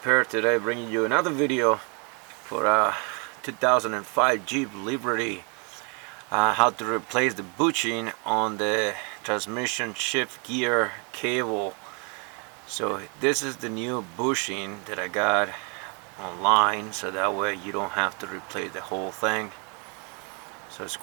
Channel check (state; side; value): quieter; left; 35.4 dB